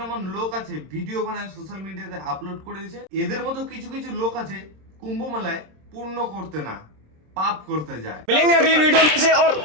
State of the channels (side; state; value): left; late; 26 ms